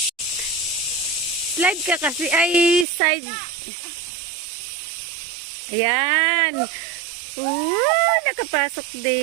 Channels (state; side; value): drops out; left; at 2.9 s